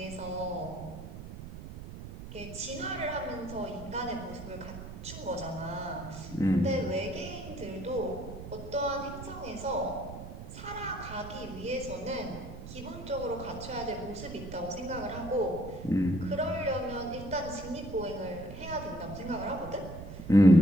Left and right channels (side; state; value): right; noise; rumble, 11 dB below the sound